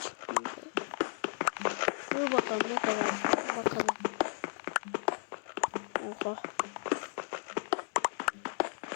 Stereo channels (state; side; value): silent; right; digital silence